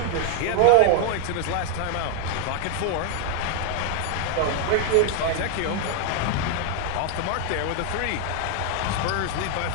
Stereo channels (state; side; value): different; both; correlation 0.00